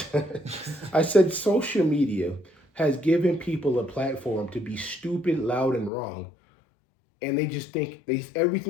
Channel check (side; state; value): right; drops out; at 5.9 s